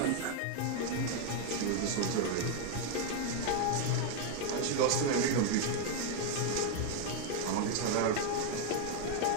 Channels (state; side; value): different; both; correlation 0.01